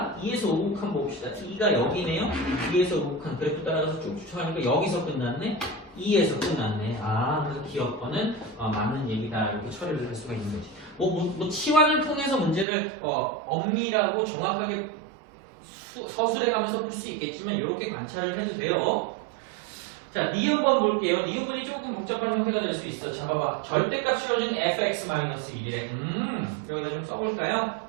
2에서 우극한 봅시다. 2가 여기네요. 2에서 우극한 그래프 따라가서 쭉 추측하니까 여기서 끝났네. 2에서 끝났네. 그래서 기억번은 맞는 얘기다. 이렇게 처리를 할 수가 있는 거지. 뭐 치환을 통해서 문제를 엄밀하고 정확하게 서술해 가면서 풀 수 있겠지만 이렇게 관찰을 해도 돼요. 자, 니은번 볼게요. 니은번이 조금 복잡한 형태가 될 수 있어. 자, 봐봐. 절대값 씌워준 fx-1이래. 여기다 좀 써볼까요?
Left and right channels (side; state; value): left; drops out; at 12.7 s